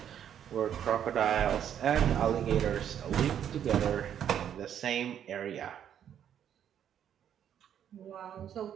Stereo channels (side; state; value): left; quieter; 9.5 dB